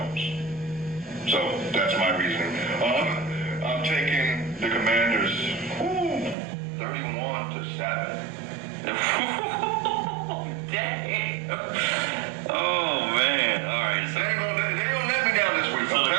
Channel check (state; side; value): drops out; left; at 6.4 s